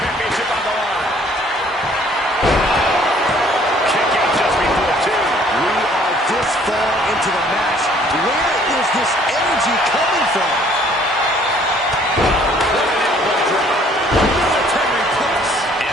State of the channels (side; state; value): both; normal; correlation 0.59